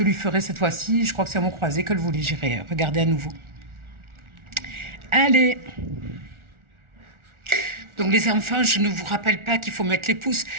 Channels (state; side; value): late; left; 1.4 ms